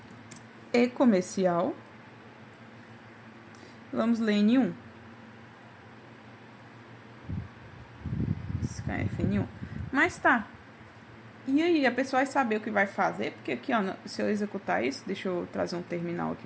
E comercial. Vamos ler N1. Scanf N1. Mas tá. E aí, a pessoa vai saber o que vai fazer, porque aqui, ó, se eu executar isso, deixa eu trazer um terminal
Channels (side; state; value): both; identical; correlation 1.00